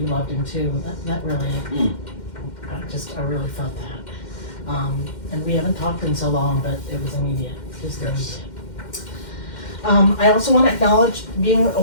loved him too, that really, I really felt that. And we haven't talked in so long, but it was immediate, just immediate. I also want to acknowledge being a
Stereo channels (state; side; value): late; right; 2.1 ms